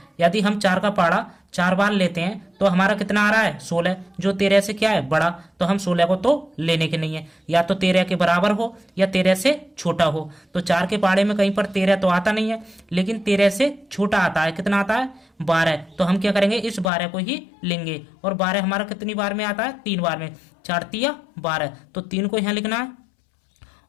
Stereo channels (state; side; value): drops out; right; at 16.9 s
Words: यदि हम 4 का पहाड़ा 4 बार लेते हैं तो हमारा कितना आ रहा है? 16, जो 13 से क्या है? बड़ा। तो हम 16 को तो लेने के नहीं है, या तो 13 के बराबर हो या 13 से छोटा हो। तो 4 के पहाड़े में कहीं पर 13 तो आता नहीं है, लेकिन 13 से छोटा आता है। कितना आता है? 12। तो हम क्या करेंगे, इस 12 को ही लेंगे। और 12 हमारा कितनी बार में आता है? 3 बार में। 4 तिया 12। तो 3 को यहाँ लिखना है